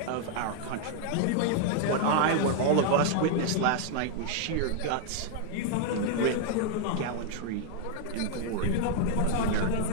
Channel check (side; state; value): both; different; correlation 0.00